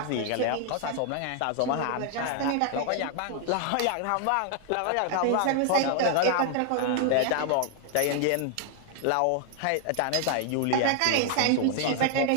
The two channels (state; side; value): different; both; correlation 0.00